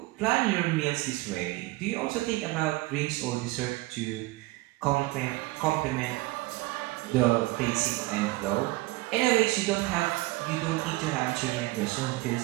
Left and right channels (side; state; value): left; quieter; 20.3 dB